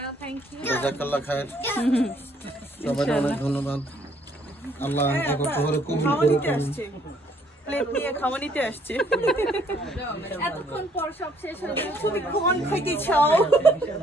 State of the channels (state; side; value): normal; both; correlation 0.65